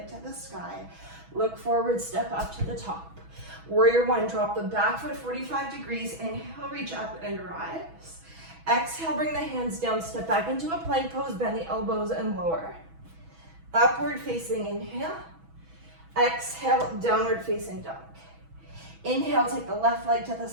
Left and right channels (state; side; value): late; left; 6.1 ms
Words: to the sky. Look forward, step up to the top. Warrior one, drop the back foot 45 degrees. Inhale, reach up and rise. Exhale, bring the hands down, step back into a plank pose, bend the elbows and lower. Upward facing inhale. Exhale, downward facing dog. Inhale, take the left leg to the